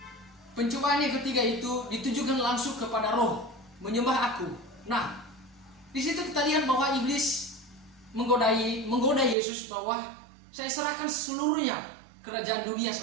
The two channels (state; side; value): drops out; left; at 9.3 s